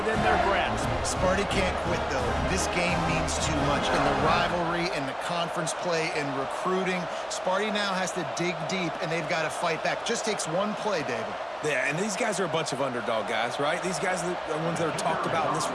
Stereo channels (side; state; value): both; identical; correlation 1.00